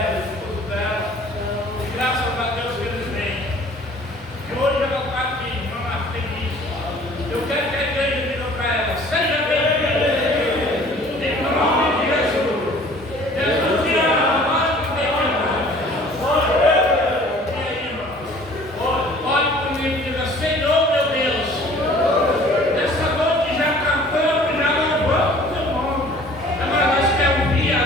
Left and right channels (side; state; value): both; normal; correlation 0.51